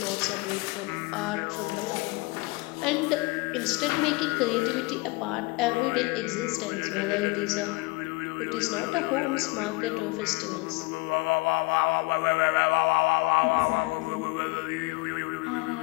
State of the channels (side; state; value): right; quieter; 25.2 dB